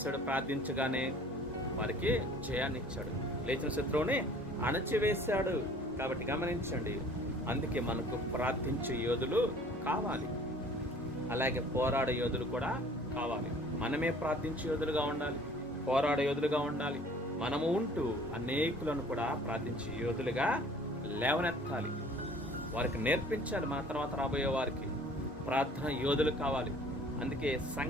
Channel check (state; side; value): normal; both; correlation 0.51